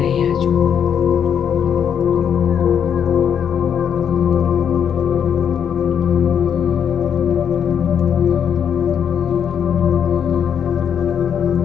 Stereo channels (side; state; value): right; quieter; 8.2 dB